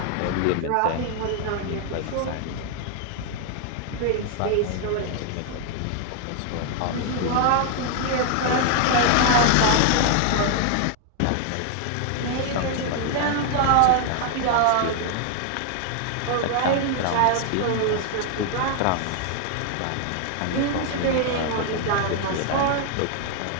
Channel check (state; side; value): different; both; correlation 0.00